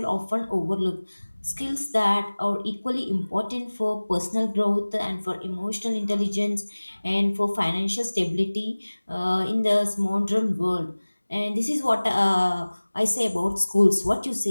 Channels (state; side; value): inverted; both; correlation -1.00